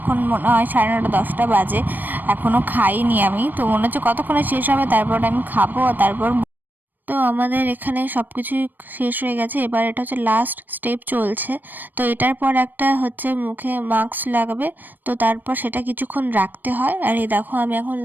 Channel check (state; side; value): late; left; 0.090 ms